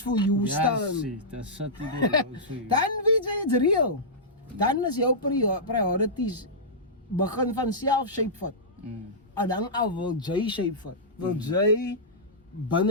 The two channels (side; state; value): both; normal; correlation -0.14